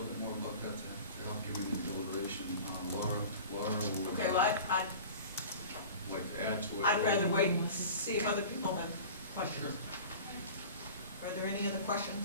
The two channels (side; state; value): both; inverted; correlation -0.39